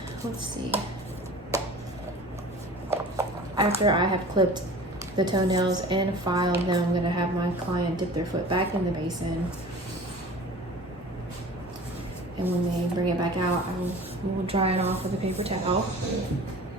Let's see. After I have clipped the toenails and filed them, I'm going to have my client dip their foot back in the basin. And when they bring it back out, I will dry it off with a paper towel.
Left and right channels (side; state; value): both; normal; correlation 0.41